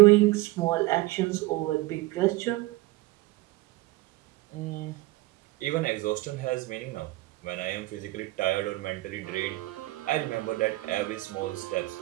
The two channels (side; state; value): left; quieter; 20.0 dB